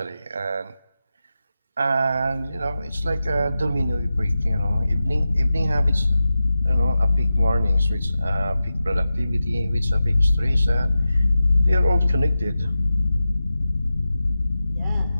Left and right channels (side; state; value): both; inverted; correlation -0.92